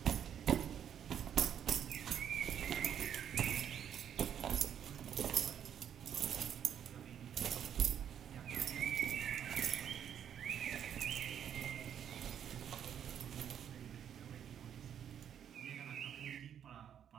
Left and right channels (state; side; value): quieter; left; 9.1 dB